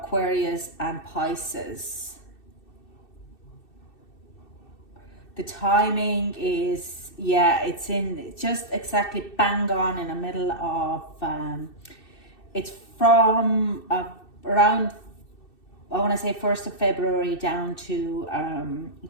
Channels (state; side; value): late; right; 2.6 ms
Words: and Pisces. The timing is, yeah, it's in just exactly bang on in the middle of, it's from around, I want to say 1st of February down to